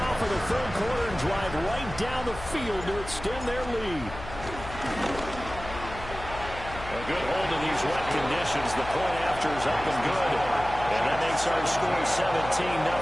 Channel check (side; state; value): left; noise; hum, 12 dB below the sound